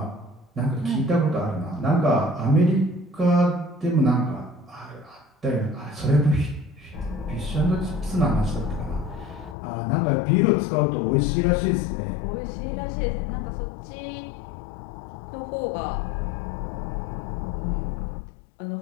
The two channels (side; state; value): right; drops out; at 9.6 s